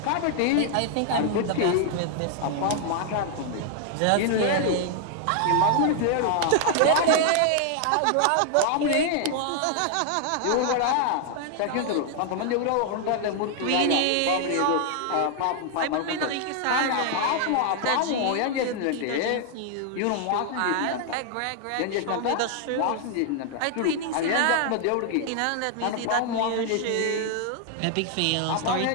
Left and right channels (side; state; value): both; different; correlation 0.00